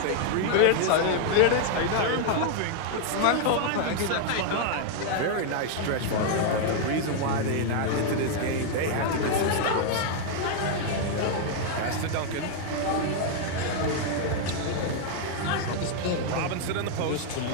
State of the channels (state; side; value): different; both; correlation 0.00